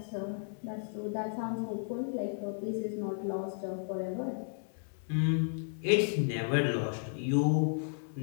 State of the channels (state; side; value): silent; right; 55 dB below the other